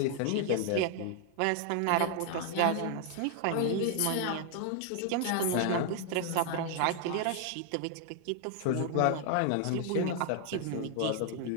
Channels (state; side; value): different; both; correlation 0.00